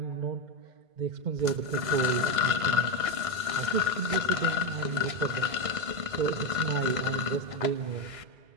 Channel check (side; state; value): left; late; 1.5 ms